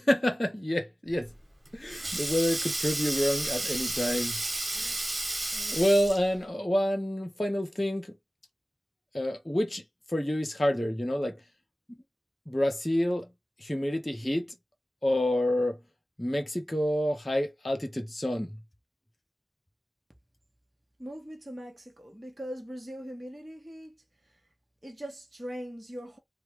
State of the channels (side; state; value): both; normal; correlation 0.96